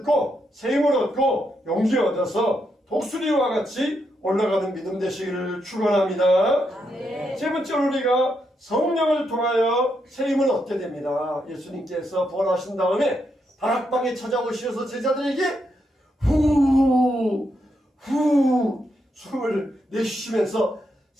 새 힘을 얻고 용기 얻어서 독수리와 같이 올라가는 믿음 되시기를 축원합니다. 세 번째로 우리가 성령을 통하여 새 힘을 얻게 됩니다. 예수님께서 부활하신 다음에 다락방에 찾아오셔서 제자들에게 후 숨을 내쉬시면서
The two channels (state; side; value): normal; both; correlation 0.81